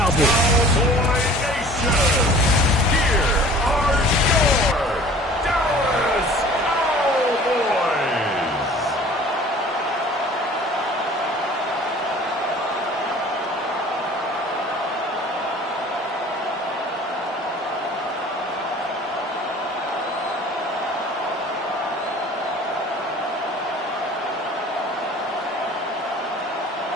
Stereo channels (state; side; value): normal; both; correlation 0.47